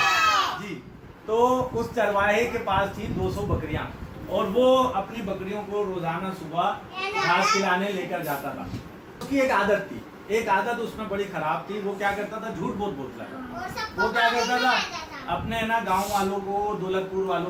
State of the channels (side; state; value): both; identical; correlation 1.00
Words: जी। तो उस चरवाहे के पास थी 200 बकरियां और वो अपनी बकरियों को रोजाना सुबह घास खिलाने लेकर जाता था। उसकी एक आदत थी, एक आदत उसमें बड़ी खराब थी। वो क्या करता था? झूठ बहुत बोलता था। वो क्या करता था? अपने है ना गांव वालों को, दौलतपुर